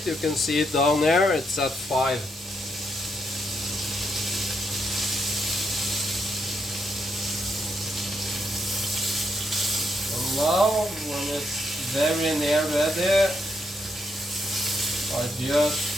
you can see it down there, it's at 5. And now, when it's very near ready, I just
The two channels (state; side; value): normal; both; correlation 0.78